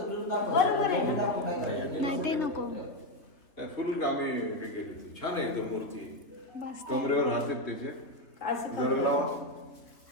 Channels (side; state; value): right; late; 3.3 ms